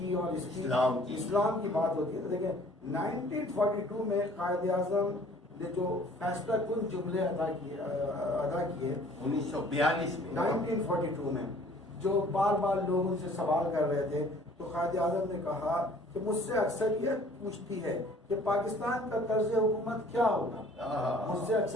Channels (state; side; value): normal; both; correlation 0.53